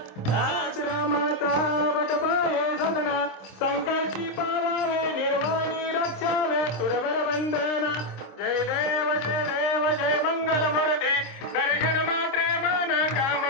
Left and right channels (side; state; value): right; late; 26 ms